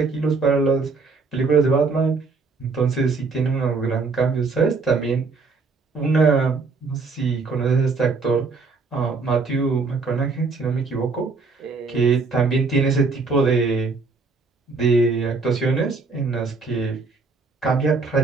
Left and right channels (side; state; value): left; quieter; 4.3 dB